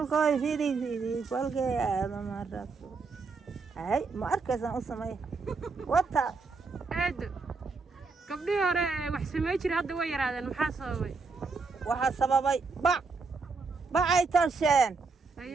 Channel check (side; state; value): left; quieter; 4.4 dB